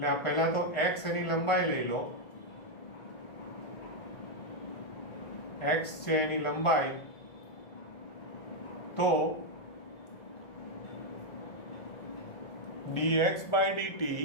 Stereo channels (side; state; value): right; late; 1.4 ms